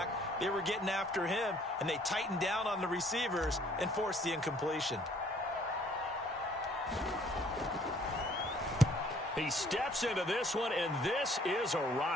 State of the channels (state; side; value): normal; both; correlation 0.60